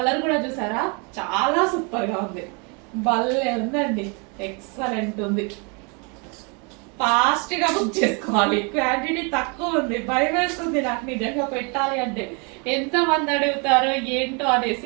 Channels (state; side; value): quieter; left; 33.6 dB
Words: కూడా చూసారా, చాలా సూపర్ గా ఉంది. భలే ఉందండి, ఎక్సలెంట్ ఉంది. ఫాస్ట్ గా బుక్ చేసుకోవాలి, క్వాంటిటీ తక్కువ ఉంది. భయం వేస్తుంది నాకు నిజంగా పెట్టాలి అంటే, ఎంత మంది అడుగుతారో ఏంటో